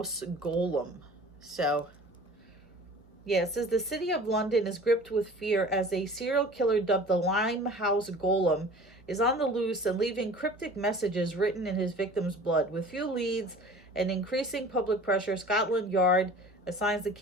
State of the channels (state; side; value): normal; both; correlation 0.43